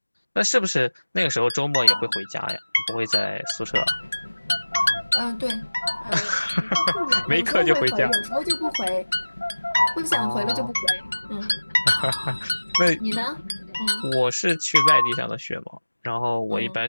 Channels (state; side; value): inverted; both; correlation -1.00